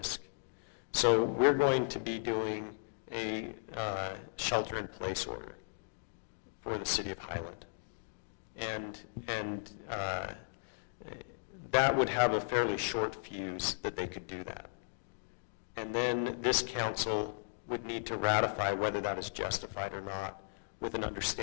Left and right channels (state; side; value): silent; right; digital silence